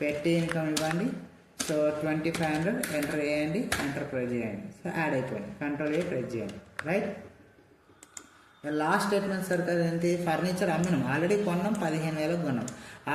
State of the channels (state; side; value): identical; both; correlation 1.00